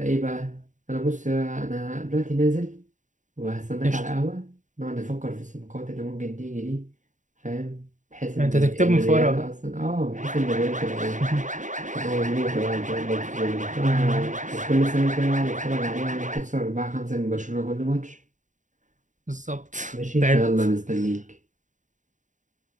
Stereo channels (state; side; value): late; left; 0.36 ms